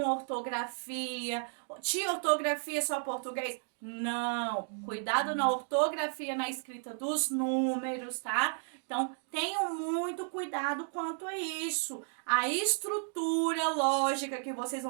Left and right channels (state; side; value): silent; left; 56 dB below the other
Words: ortografia. Tia, ortografia só português? Não, cuidado na ortografia, na escrita dos números, tá? Então, tenham muito cuidado quanto a isso. A estrutura lógica que vocês